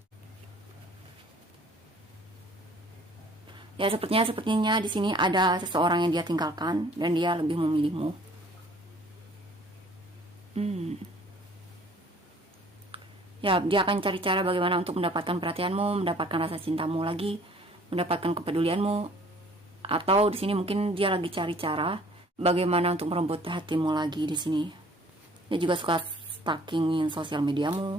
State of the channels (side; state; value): both; normal; correlation 0.54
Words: ya sepertinya di sini ada seseorang yang dia tinggalkan dan dia lebih memilihmu. Ya, dia akan cari cara bagaimana untuk mendapatkan perhatianmu, mendapatkan rasa cintamu lagi, mendapatkan kepedulianmu. Atau di sini mungkin dia lagi cari cara bagaimana untuk merebut hatimu lagi di sini. Dia juga suka stalkingin sosial mediamu.